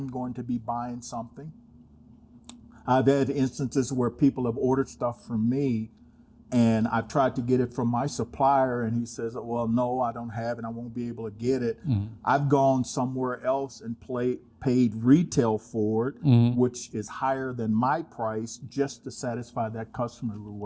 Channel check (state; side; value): identical; both; correlation 1.00